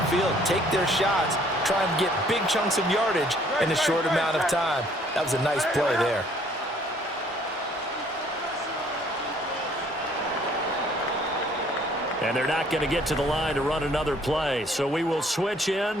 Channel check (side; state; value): both; normal; correlation 0.60